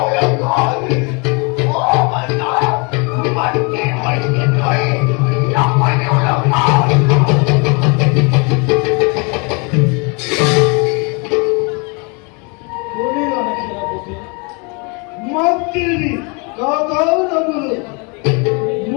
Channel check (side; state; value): right; quieter; 32.3 dB